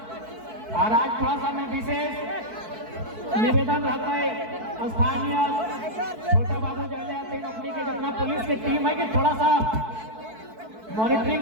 और आज थोड़ा सा मैं विशेष निवेदन रहता है स्थानीय छोटे बाबू जले आते अपनी के जितना पुलिस की टीम है कि थोड़ा सा मॉनिटरिंग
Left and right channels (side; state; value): left; late; 4.6 ms